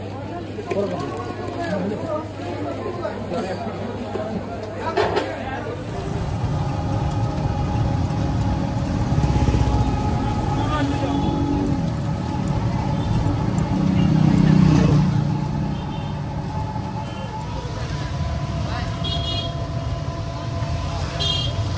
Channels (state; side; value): identical; both; correlation 1.00